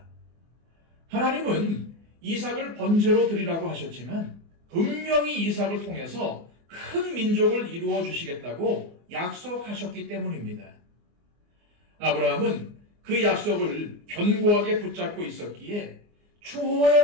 하나님은 이삭을 번제로 드리라고 하셨지만 분명히 이삭을 통해서 큰 민족을 이루어 주시겠다고 약속하셨기 때문입니다. 아브라함은 그 약속을 견고하게 붙잡고 있었기에 초호의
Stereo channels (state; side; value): late; left; 24 ms